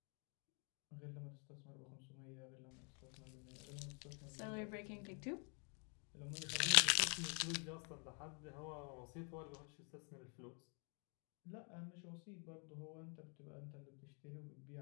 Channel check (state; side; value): quieter; right; 38.1 dB